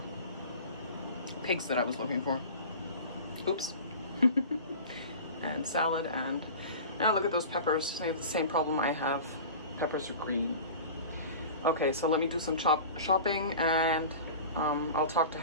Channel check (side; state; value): both; inverted; correlation -0.36